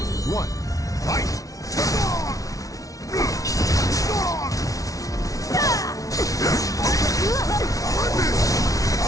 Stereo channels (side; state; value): right; late; 0.17 ms